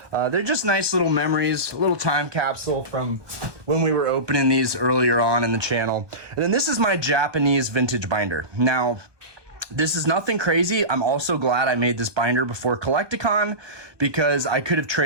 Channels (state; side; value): late; left; 1.2 ms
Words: They're just nice little memories, a little time capsule from when we were opening these earlier on in the channel. And then this is my Japanese vintage binder. Now, this is nothing crazy. I'm also glad I made this binder before Collecticon because I could have